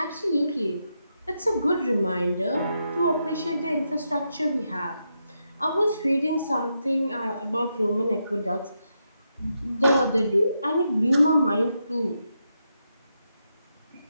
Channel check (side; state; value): both; inverted; correlation -0.84